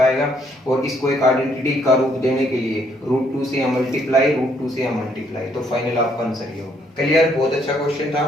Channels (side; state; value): both; normal; correlation 0.69